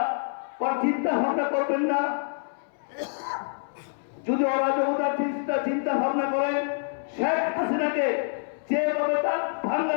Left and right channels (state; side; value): silent; right; 60 dB below the other